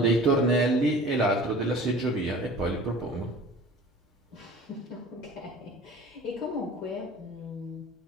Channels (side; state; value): both; normal; correlation 0.43